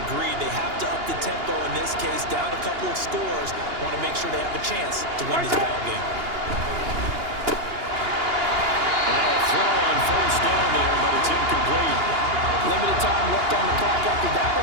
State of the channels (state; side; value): late; left; 2.8 ms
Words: agreed. They have to up the tempo in this case, down a couple of scores. Want to make sure they have a chance to win this ball game. Throw on first down there, but it's incomplete. Limited time left on the clock after that